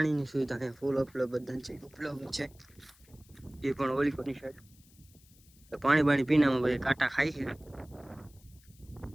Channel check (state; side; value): noise; left; hiss, 28 dB below the sound